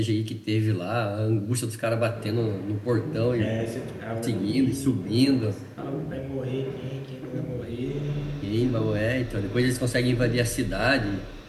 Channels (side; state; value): both; identical; correlation 1.00